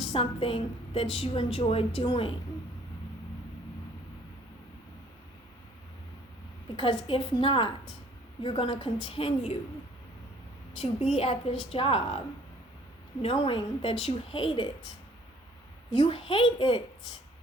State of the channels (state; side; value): normal; both; correlation 0.58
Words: something that you enjoy doing. Because if not, you're going to continue to be at this job knowing that you hate it. You hate it.